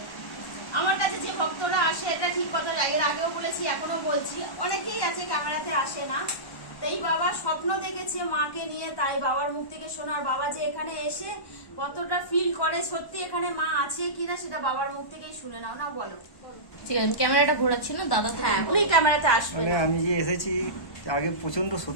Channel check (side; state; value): right; late; 1.1 ms